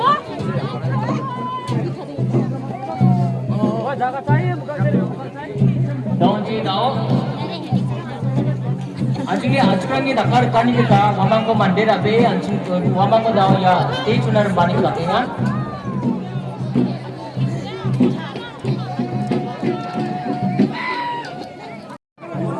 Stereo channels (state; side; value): identical; both; correlation 1.00